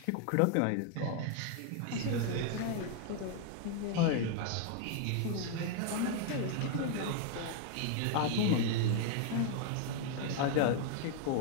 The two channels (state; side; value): different; both; correlation 0.00